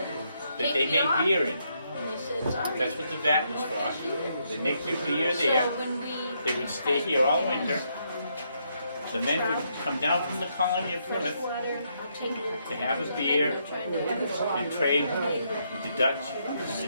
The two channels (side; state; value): both; inverted; correlation -0.76